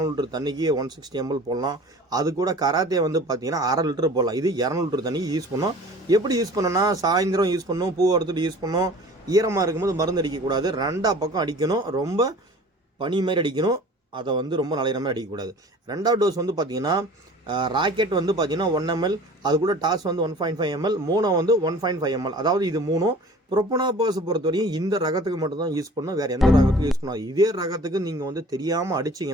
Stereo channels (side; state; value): both; normal; correlation 0.44